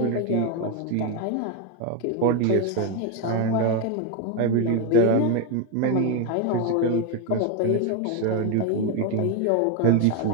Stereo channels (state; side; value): different; both; correlation 0.02